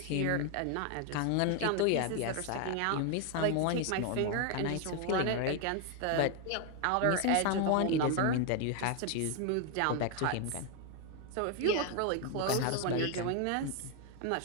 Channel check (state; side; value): different; both; correlation 0.01